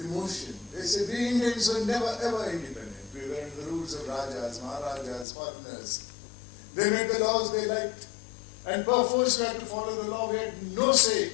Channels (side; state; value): right; drops out; at 5.2 s